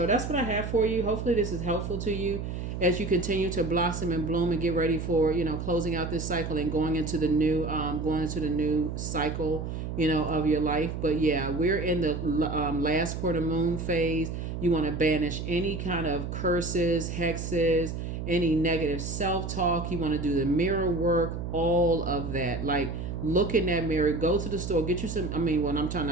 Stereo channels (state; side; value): noise; right; hum, 5 dB below the sound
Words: that's what I have for you. Hopefully, this is helpful to you as you continue to blossom and bloom and get ready for closing out this cycle and going into the new cycle of your life. But yeah, we're in the last quarter moon phase. You want to banish any kind of curses, hexes, any negative self-talk. You want to do the mirror work, all of that. Like, look in that mirror, go to the store, get you some. I mean, when I'm